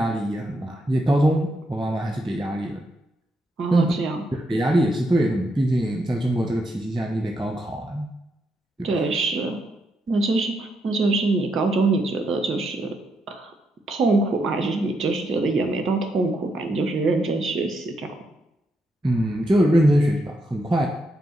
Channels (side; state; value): both; normal; correlation 0.80